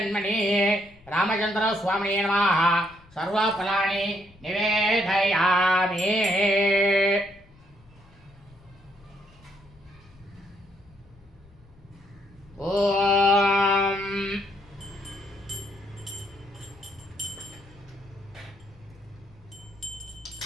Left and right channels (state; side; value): noise; left; rumble, 26 dB below the sound